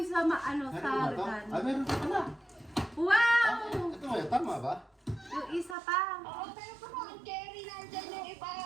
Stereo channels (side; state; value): left; drops out; at 5.8 s